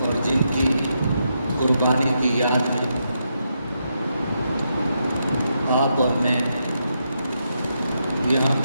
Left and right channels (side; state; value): both; inverted; correlation -0.82